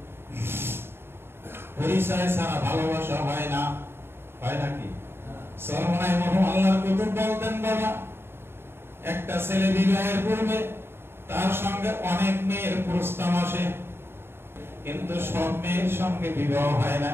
পরিচয় ছাড়া ভালোবাসা হয় না, হয় নাকি? সরমনাই মরহুম আল্লাহর কুতুব বলতেন, বাবা, একটা ছেলে বিবাহের পূর্বে তার সঙ্গে অনেক মেয়ের প্রস্তাব আসে, কিন্তু সব মেয়ের সঙ্গে বিবাহ হয় না,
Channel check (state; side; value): late; left; 0.11 ms